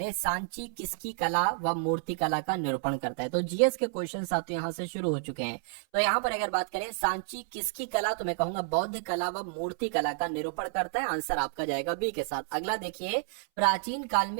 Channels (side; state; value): left; silent; 58 dB below the other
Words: सांची किसकी कला व मूर्ति कला का निरूपण करता है? तो जीएस के क्वेश्चन साथियों यहाँ से शुरू हो चुके हैं। तो यहाँ पर अगर बात करें सांची किसकी कला, तो मैं कहूंगा बौद्ध कला व मूर्ति कला का निरूपण करता है। आंसर आपका जाएगा बी के साथ। अगला देखिए, प्राचीन काल